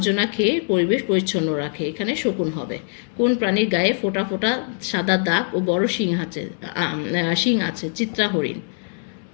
খেয়ে পরিবেশ পরিচ্ছন্ন রাখে? এখানে শকুন হবে। কোন প্রাণীর গায়ে ফোঁটা ফোঁটা সাদা দাগ ও বড় শিং আছে? চিত্রা হরিণ।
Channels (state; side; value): silent; right; 64 dB below the other